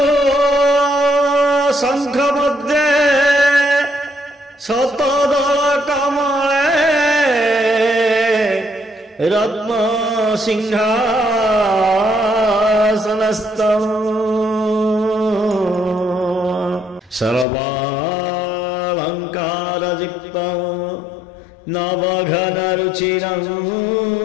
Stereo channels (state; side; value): drops out; right; at 17.4 s